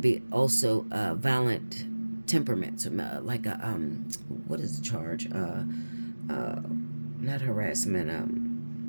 be also violent temperament, like a, what is the charge? Not harassment,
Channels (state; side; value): inverted; both; correlation -1.00